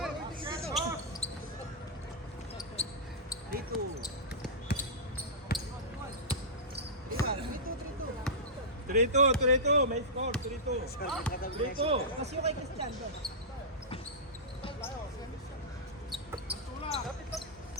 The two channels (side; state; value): both; normal; correlation -0.15